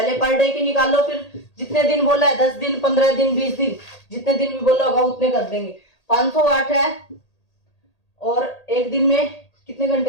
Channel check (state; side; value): late; right; 1.8 ms